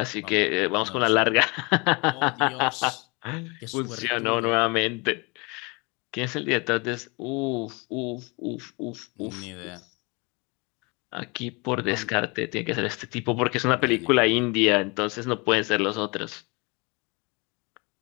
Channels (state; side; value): quieter; right; 28.6 dB